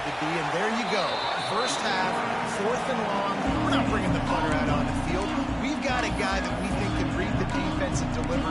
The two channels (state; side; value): identical; both; correlation 1.00